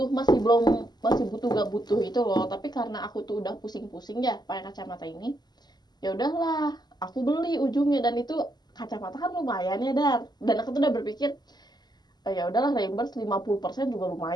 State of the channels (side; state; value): right; late; 0.20 ms